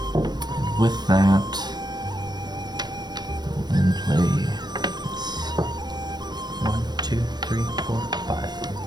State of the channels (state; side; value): late; left; 0.20 ms